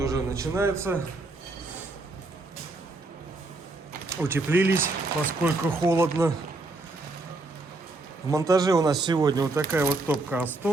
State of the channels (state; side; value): quieter; left; 3.1 dB